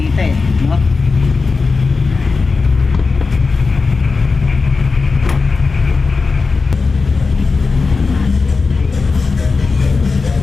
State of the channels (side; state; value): right; quieter; 4.3 dB